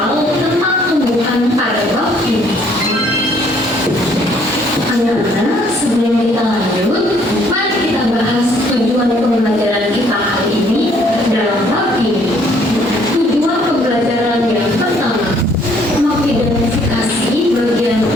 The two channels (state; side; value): normal; both; correlation 0.63